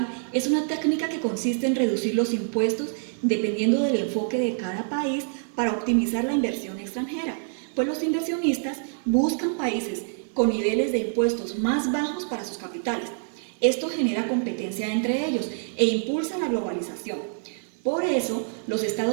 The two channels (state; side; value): silent; left; digital silence